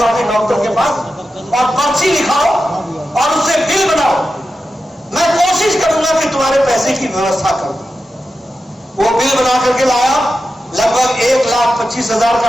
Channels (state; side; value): normal; both; correlation 0.91